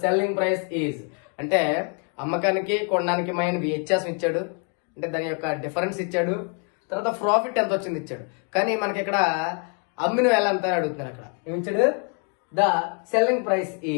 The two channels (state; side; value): quieter; right; 38.7 dB